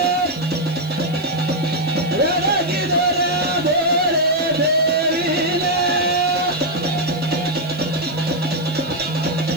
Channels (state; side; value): noise; left; hiss, 23 dB below the sound